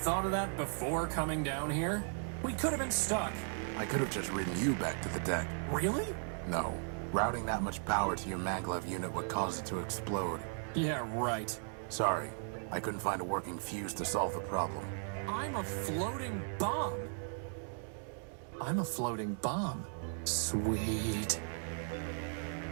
of that before coming down here? We could have been stuck. I could have just ridden you back to the deck. Really? No. Routing that much power to your maglev unit would cause it to explode. Yeah, right. Sorry, I couldn't find a working fuse to solve the problem. I'm a floating bomb. I'm a floating bomb. Sweet.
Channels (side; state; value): left; silent; 53 dB below the other